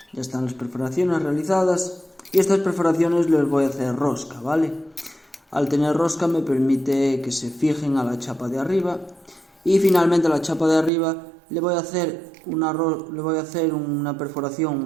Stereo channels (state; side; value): drops out; left; at 10.9 s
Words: ya están las perforaciones realizadas, y estas perforaciones les voy a hacer rosca, ¿vale? Al tener rosca me permite que se fijen a la chapa de arriba, y finalmente a la chapa de arriba le voy a hacer una perforación